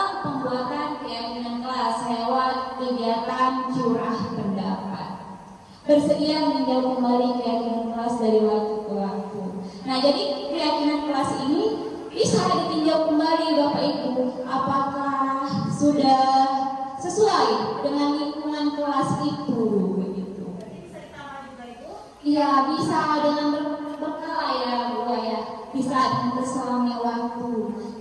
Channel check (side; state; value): both; identical; correlation 1.00